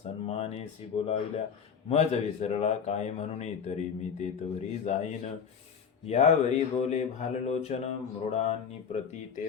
बोलाविल्या मज विसरला काय म्हणून तरी मी तेतवरी जाईन यावरी बोले भाललोचन मृडांनी प्रती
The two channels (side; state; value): right; quieter; 6.9 dB